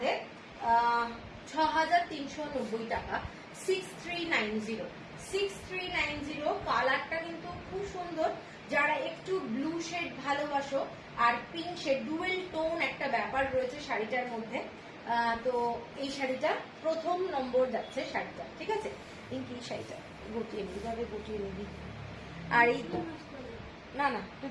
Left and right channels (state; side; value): identical; both; correlation 1.00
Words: 6390 টাকা, 6390, 6390। কালারটা কিন্তু খুব সুন্দর। যারা একটু ব্লু শেড ভালোবাসো আর পিঙ্ক শেড, ডুয়েল টোন একটা ব্যাপার রয়েছে শাড়িটার মধ্যে, তো এই শাড়িটা প্রথম নম্বর যাচ্ছে শাড়িটা, ঠিক আছে। পিঙ্কি শাড়িটা গুটিয়ে নিবি, ভাবে গুটিয়ে নিবি। আর এই না না, তুই